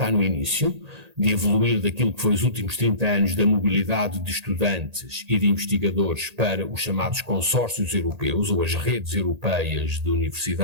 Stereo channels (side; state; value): left; late; 1.8 ms